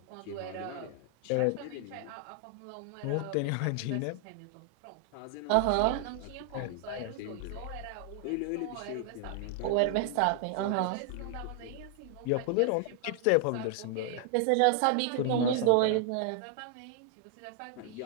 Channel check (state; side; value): different; both; correlation 0.00